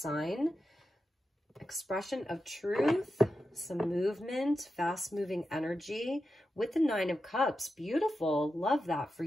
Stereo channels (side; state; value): both; normal; correlation 0.90